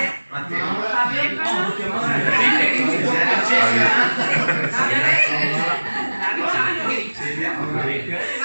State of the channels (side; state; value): both; inverted; correlation -1.00